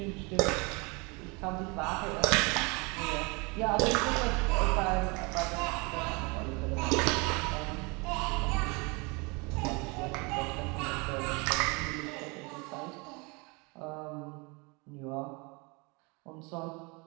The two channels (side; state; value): left; quieter; 28.8 dB